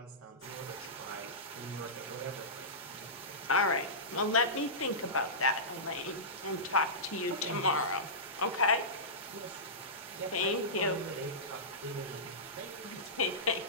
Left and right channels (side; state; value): both; normal; correlation -0.18